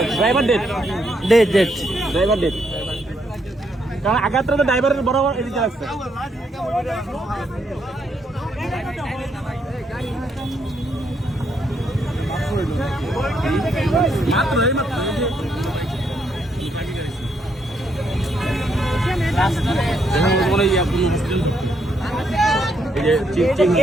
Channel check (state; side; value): normal; both; correlation 0.75